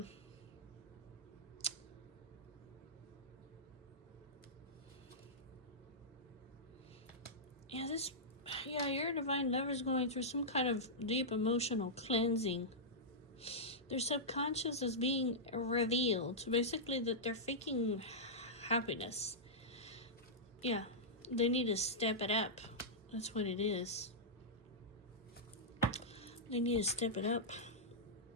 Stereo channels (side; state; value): both; normal; correlation -0.12